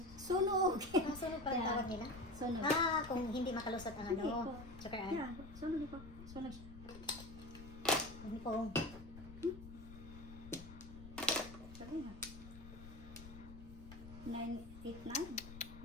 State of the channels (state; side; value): noise; left; rumble, 14 dB below the sound